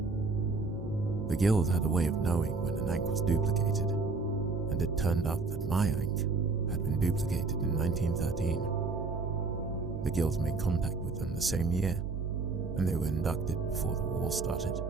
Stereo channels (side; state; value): left; quieter; 4.0 dB